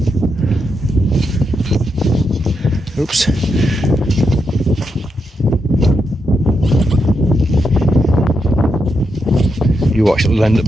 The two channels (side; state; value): both; normal; correlation 0.83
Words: Oops. You watch, it'll end up